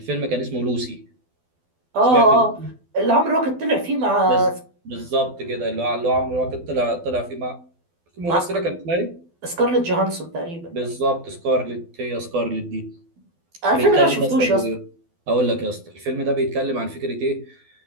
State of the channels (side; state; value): left; late; 12 ms